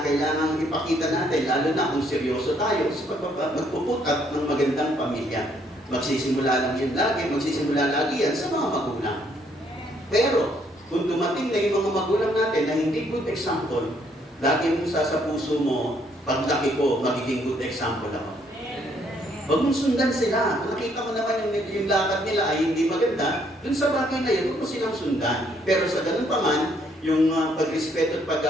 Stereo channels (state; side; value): normal; both; correlation 0.68